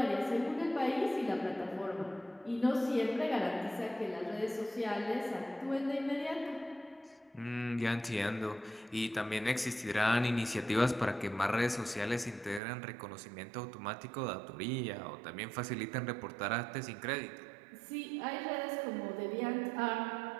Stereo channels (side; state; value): left; drops out; at 12.6 s